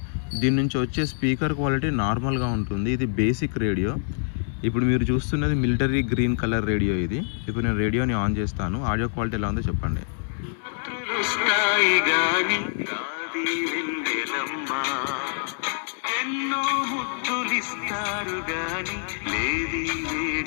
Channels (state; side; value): silent; right; 61 dB below the other